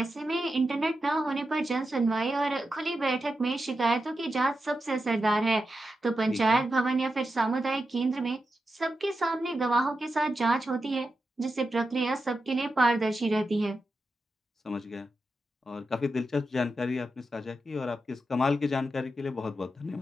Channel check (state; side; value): normal; both; correlation 0.89